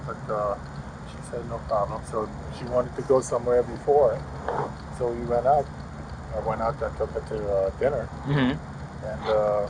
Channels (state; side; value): identical; both; correlation 1.00